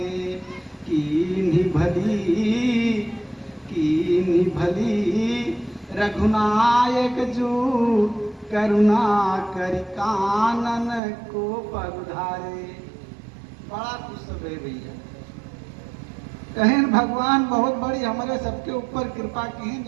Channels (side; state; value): left; drops out; at 11.0 s